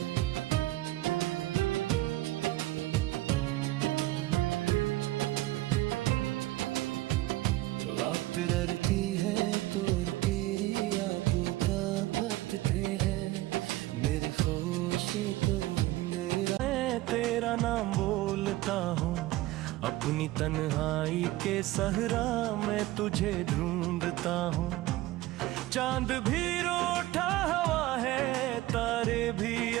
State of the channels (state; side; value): quieter; left; 17.3 dB